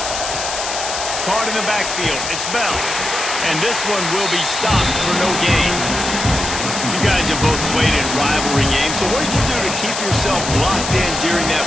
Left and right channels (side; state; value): left; noise; hiss, 5 dB below the sound